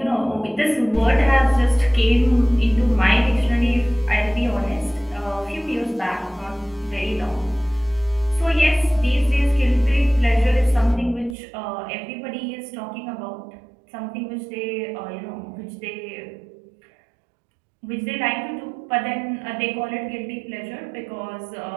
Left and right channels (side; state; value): left; drops out; at 11.4 s